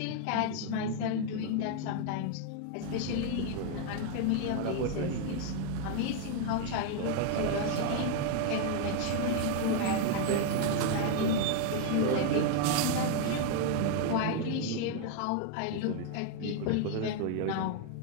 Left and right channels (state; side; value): different; both; correlation 0.00